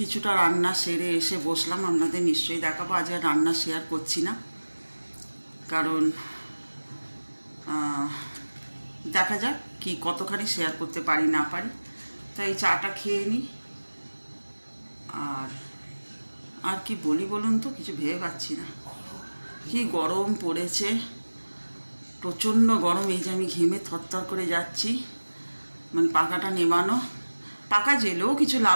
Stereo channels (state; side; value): inverted; both; correlation -1.00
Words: রান্না সেরে এসে বসলাম। আপনাদের নিশ্চয়ই দেখাবো, আজ আর রান্না শেয়ার করছি না, কারণ দেখা যাক কি কতখানি শেয়ার করতে পারি না পারি। তাই চাটা খেয়ে নিই। আর কি বলি বলুন তো, কিছু ভেবে পাচ্ছি না। কি গরম পড়েছে, প্রচণ্ড গরম। এই যে আমি ঘেমে থরথর করে যাচ্ছি, মানে পাখাটা নেমানো, পাখা জেলেও কিছু